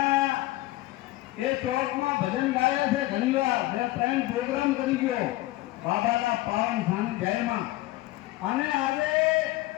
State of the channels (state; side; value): quieter; right; 17.7 dB